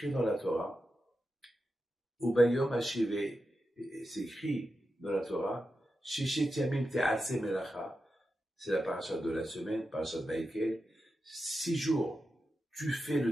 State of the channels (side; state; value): both; normal; correlation 0.90